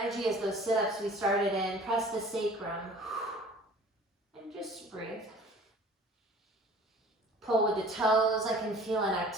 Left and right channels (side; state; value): both; normal; correlation 0.47